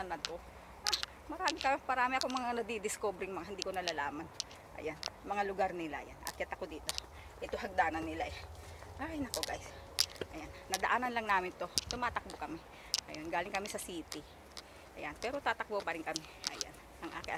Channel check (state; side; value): identical; both; correlation 1.00